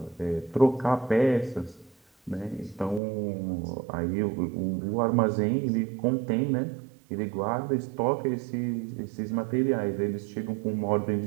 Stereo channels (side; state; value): left; drops out; at 3.0 s